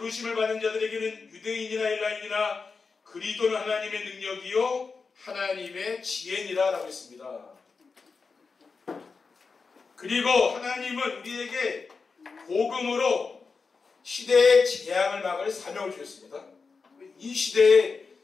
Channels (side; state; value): right; quieter; 4.7 dB